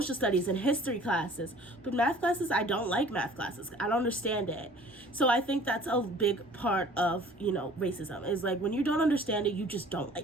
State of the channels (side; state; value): both; normal; correlation 0.50